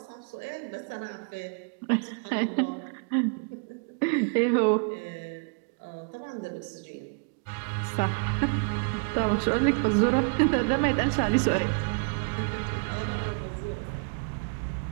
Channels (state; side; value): quieter; left; 38.4 dB